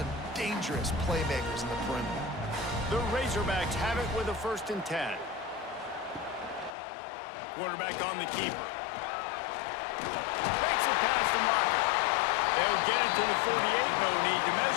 dangerous playmakers in the perimeter. The Razorbacks have it with a 1st and 10. Quarterback on the keeper. Makes it past the marker. They'll get it to the 48. No need to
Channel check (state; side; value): drops out; right; at 6.7 s